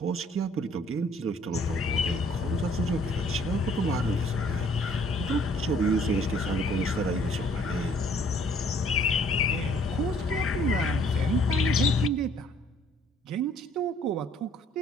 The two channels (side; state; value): both; normal; correlation 0.60